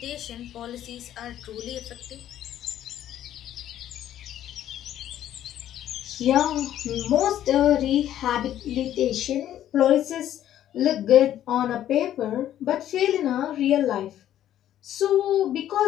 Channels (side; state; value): right; quieter; 11.7 dB